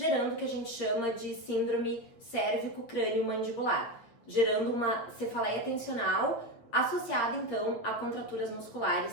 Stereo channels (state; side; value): late; right; 8.9 ms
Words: o que a gente chama de síndrome cérvico-crânio-mandibular, gerando uma cefaleia tensional associada então a contraturas